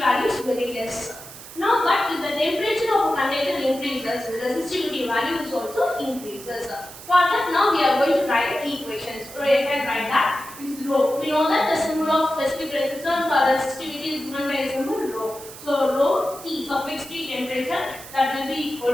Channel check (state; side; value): noise; right; hiss, 15 dB below the sound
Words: is very less. Now, but if the temperature of a conductor increases, the resistivity value is also increases. For that, now we are going to write equations. So you can write that is rho. We know that the symbol of specific resistance or resistivity is given by a symbol rho. So rho T suffix T temperature, that will be equal